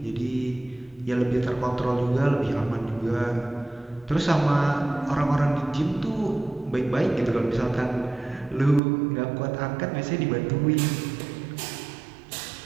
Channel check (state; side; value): drops out; left; at 8.8 s